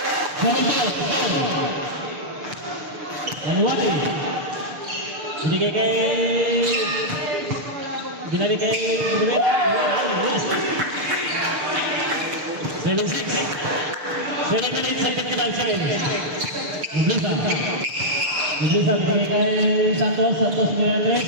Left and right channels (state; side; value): late; left; 6.7 ms